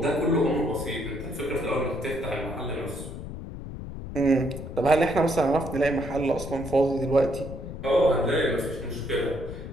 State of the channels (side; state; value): left; noise; rumble, 9 dB below the sound